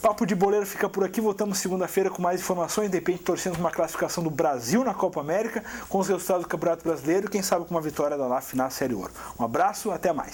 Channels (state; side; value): identical; both; correlation 1.00